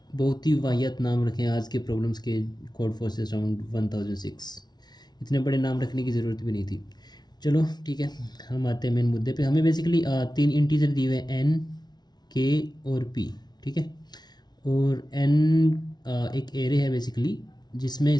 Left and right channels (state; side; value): late; right; 0.20 ms